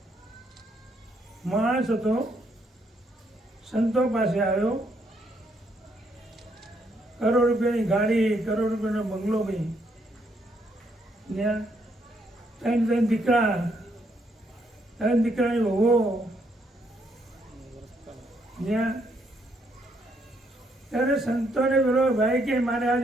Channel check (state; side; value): normal; both; correlation 0.73